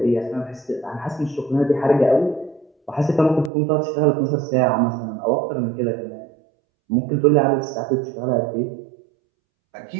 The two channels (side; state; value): left; drops out; at 3.5 s